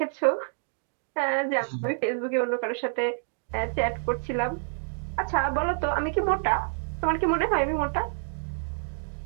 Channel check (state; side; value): silent; left; digital silence